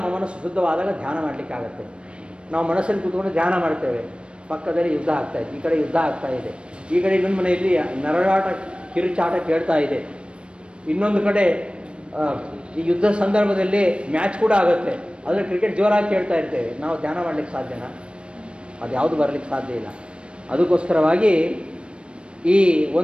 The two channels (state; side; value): late; left; 0.057 ms